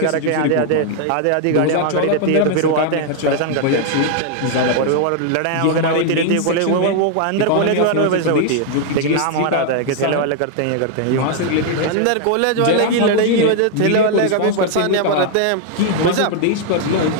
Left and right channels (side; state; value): both; different; correlation 0.00